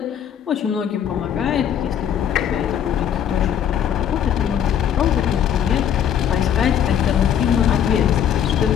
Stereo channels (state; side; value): quieter; right; 9.2 dB